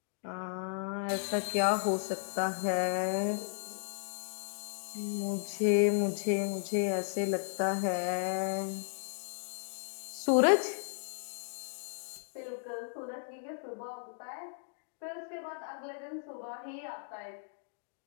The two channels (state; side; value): silent; right; digital silence